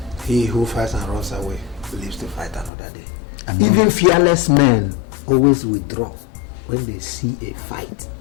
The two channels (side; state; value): right; drops out; at 2.7 s